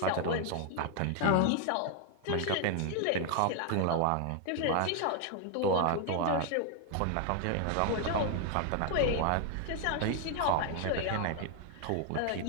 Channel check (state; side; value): different; both; correlation 0.00